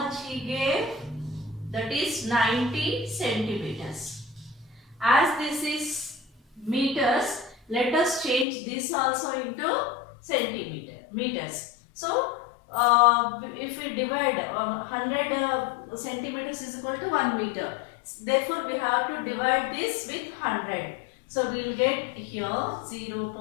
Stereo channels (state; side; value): drops out; right; at 8.5 s